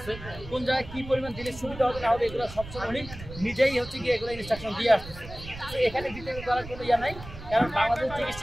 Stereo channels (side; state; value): right; noise; rumble, 14 dB below the sound